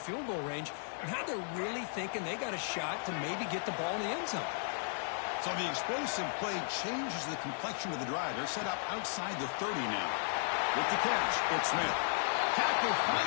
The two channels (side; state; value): right; silent; 54 dB below the other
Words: goal range, now they're really thinking they got a shot to maybe get the ball in the end zone. So the explosive play changes the complexion of the drive. They're set up outside the 30 now. With the catch, it's Smith. Tackle